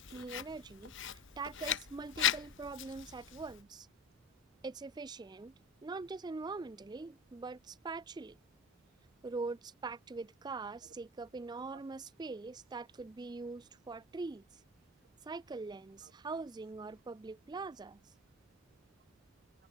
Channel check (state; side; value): normal; both; correlation 0.31